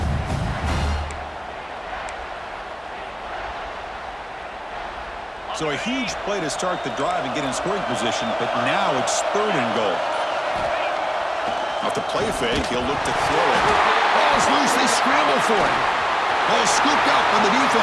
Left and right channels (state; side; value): identical; both; correlation 1.00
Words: So a huge play to start the drive and get in scoring position, but now it's 3rd and goal. Off the play fake, he'll look to throw it. Ball's loose, they scramble for it. Ball scooped up on the